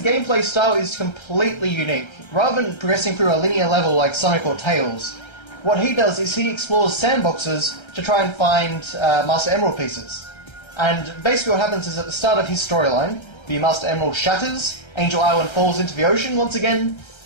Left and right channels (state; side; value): late; right; 1.3 ms